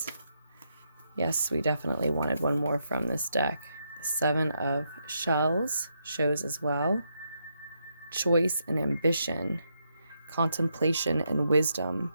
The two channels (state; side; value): inverted; both; correlation -0.80